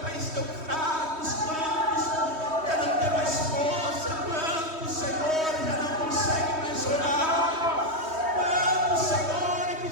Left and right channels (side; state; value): left; late; 3.2 ms